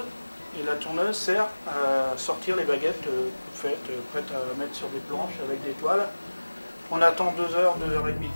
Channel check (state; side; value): inverted; both; correlation -1.00